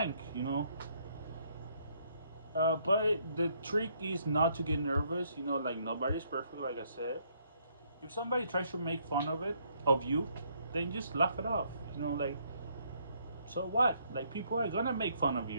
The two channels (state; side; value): inverted; both; correlation -0.69